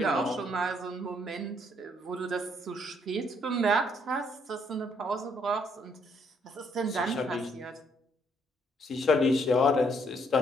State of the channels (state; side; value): normal; both; correlation 0.69